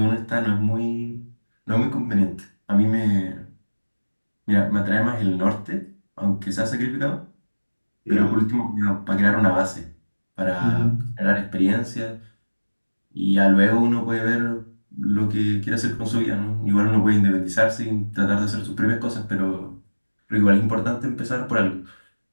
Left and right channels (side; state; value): both; inverted; correlation -1.00